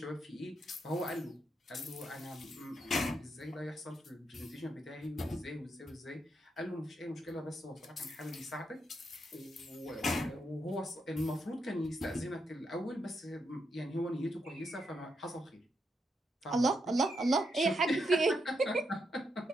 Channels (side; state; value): both; normal; correlation 0.81